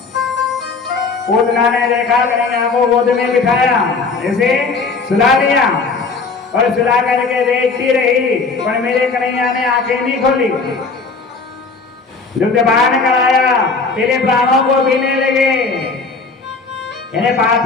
पूतना ने देखा कन्हैया को गोद में बिठाया, ऐसे सुला दिया और सुला करके देखती रही, पर मेरे कन्हैया ने आंखें नहीं खोली। दुग्धपान कराया, पहले प्राणों को पीने लगे, इन्हें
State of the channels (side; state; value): right; quieter; 4.3 dB